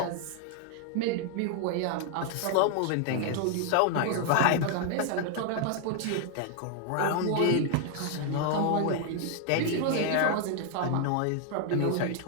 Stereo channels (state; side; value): different; both; correlation 0.00